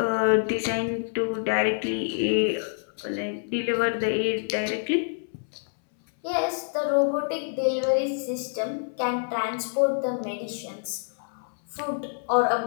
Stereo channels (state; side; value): silent; right; 60 dB below the other